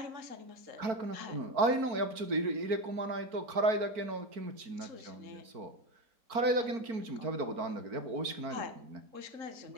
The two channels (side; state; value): left; late; 4.5 ms